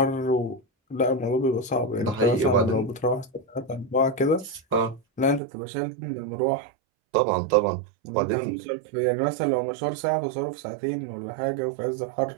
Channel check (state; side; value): drops out; left; at 5.4 s